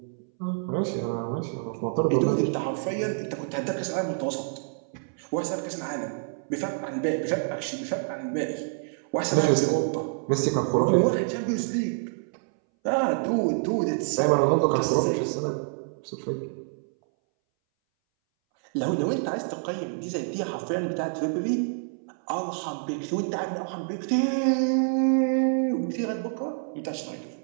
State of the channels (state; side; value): silent; left; 60 dB below the other